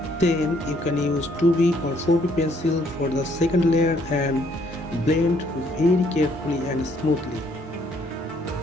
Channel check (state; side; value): normal; both; correlation 0.66